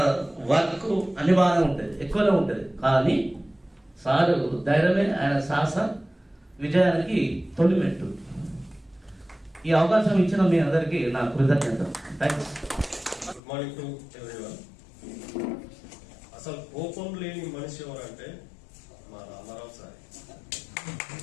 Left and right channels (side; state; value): right; drops out; at 13.4 s